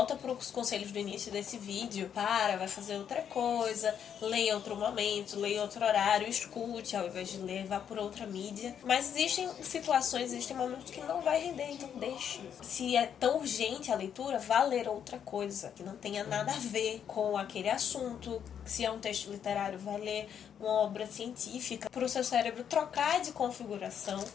para os conselhos do início desse vídeo. Vai fazer outra coisa, leia outro momento, leia outro horário, escute ao invés de ler, vá por outra mídia. Mas existem situações, existem momentos que não vai render, então deixe. Se é tão urgente a leitura, vá ler outra coisa, que não tenha nada a ver com aquele assunto. Se é um texto literário, vai ler uma obra científica para o seu cérebro trocar de configuração.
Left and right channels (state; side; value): quieter; right; 8.5 dB